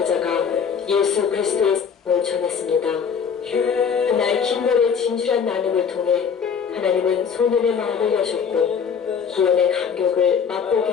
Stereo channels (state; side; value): quieter; right; 6.7 dB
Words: 예수 그리스도의 사랑을 전했습니다. 그날 킴볼의 진실한 나눔을 통해 하나님은 소년의 마음을 여셨고 구원의 감격을 맛보게